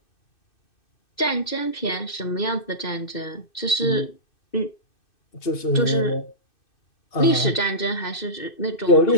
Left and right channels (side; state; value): right; late; 2.6 ms